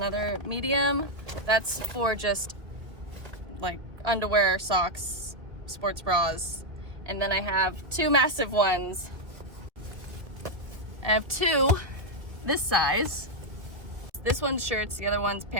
medium. That's for just like underwear, socks, sports bras. And then I have two massive ones. I have two this size. This one's shirts, the other one's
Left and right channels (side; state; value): left; late; 1.5 ms